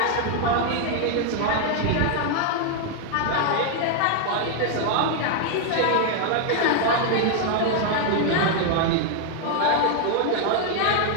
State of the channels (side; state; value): both; different; correlation 0.00